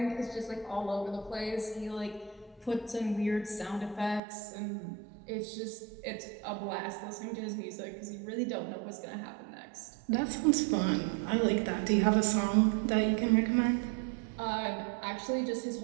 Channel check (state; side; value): drops out; left; at 4.2 s